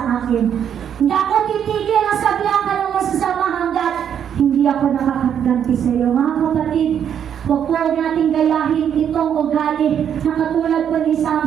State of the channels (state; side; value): quieter; left; 8.8 dB